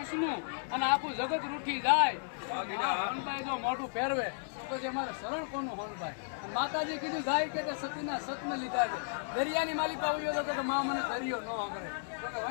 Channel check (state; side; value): silent; right; digital silence